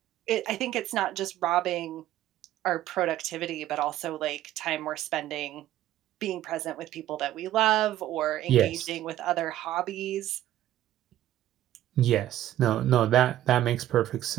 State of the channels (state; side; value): quieter; left; 13.3 dB